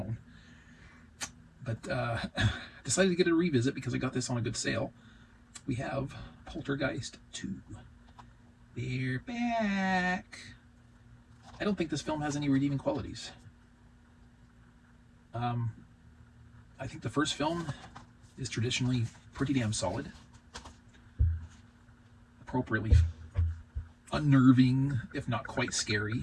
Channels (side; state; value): both; identical; correlation 1.00